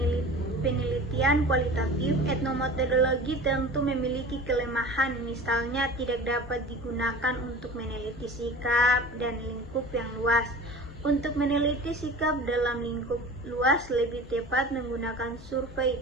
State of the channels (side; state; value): both; normal; correlation 0.38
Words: penelitian kualitatif, etnometodologi tentu memiliki kelemahan, misalnya tidak dapat digunakan untuk meneliti sikap dan lingkup yang luas. Untuk meneliti sikap dalam lingkup luas lebih tepat menggunakan survei